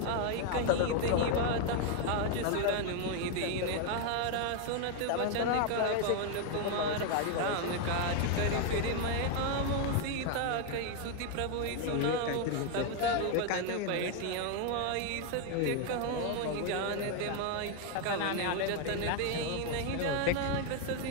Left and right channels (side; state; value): both; different; correlation 0.01